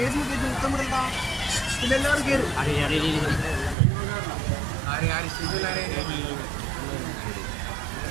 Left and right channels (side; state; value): left; drops out; at 3.8 s